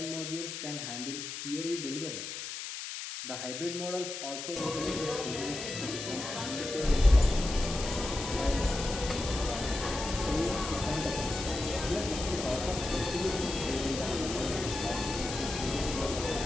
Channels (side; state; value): left; noise; hiss, 7 dB below the sound